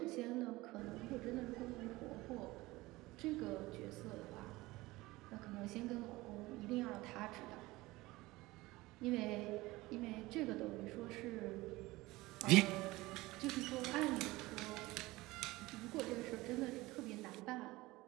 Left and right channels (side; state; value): left; quieter; 20.0 dB